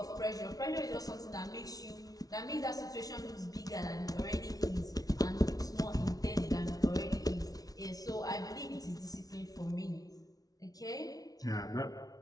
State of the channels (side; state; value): right; late; 0.18 ms